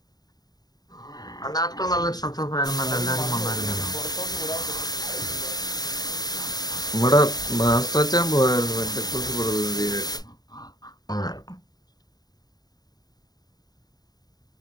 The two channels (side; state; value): right; late; 0.19 ms